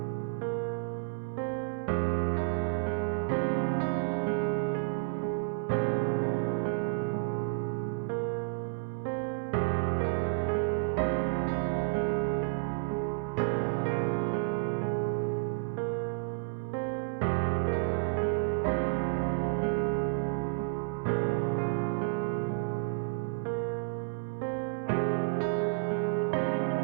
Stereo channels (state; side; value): silent; left; 57 dB below the other